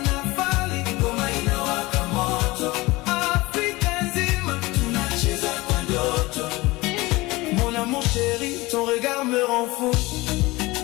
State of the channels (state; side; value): quieter; right; 21.4 dB